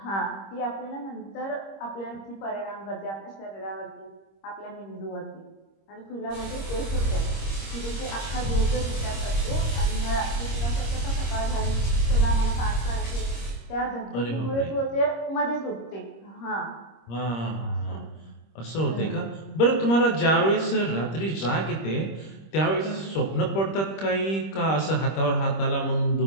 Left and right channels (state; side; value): late; right; 26 ms